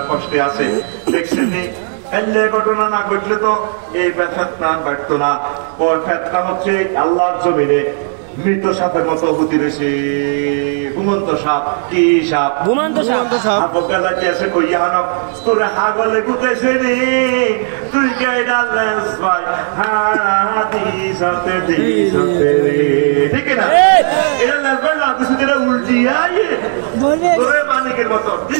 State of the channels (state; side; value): silent; left; digital silence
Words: কষ্টে আছে দেখছেন নি এলে ঘটনা না ঘটলে তো এই ফেতনা বাড়তো না ওর ফেতনা হচ্ছে আল্লাহর জমিনে মৃত সাপের মতো হতে রয়েছে ঘুমন্ত সাপ কি সাপ ঘুমন্ত সাপ বকালা কি আছে কইয়া হানো তোরে হাগলে গুতেছে নি তুই গাইডা লেস ভাই হাদিসাতে দিসাতে ঠিক না এটা লেস ভাই না কিছু এটা উল্টিয়া তোরে মালিকের মতো